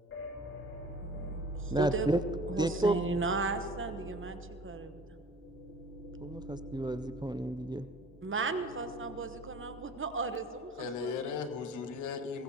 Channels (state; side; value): normal; both; correlation 0.44